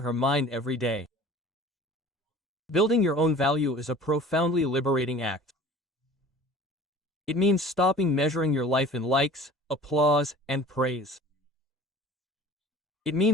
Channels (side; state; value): both; normal; correlation 0.44